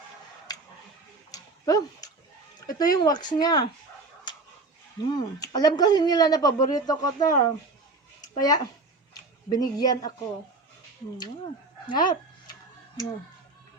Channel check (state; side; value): quieter; left; 3.4 dB